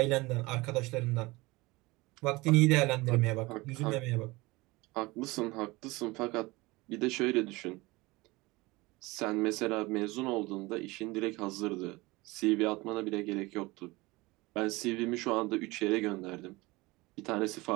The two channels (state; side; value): quieter; left; 22.3 dB